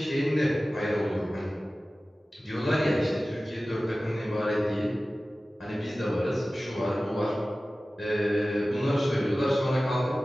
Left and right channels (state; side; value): normal; both; correlation 0.96